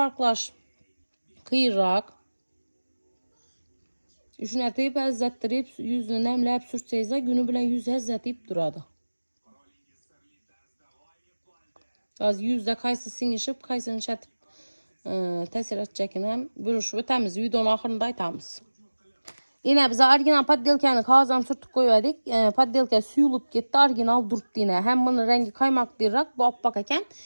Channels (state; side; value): inverted; both; correlation -1.00